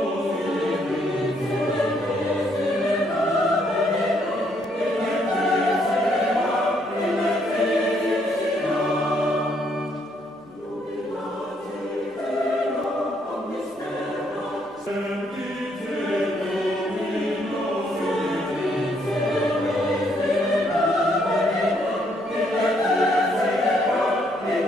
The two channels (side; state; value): both; normal; correlation 0.71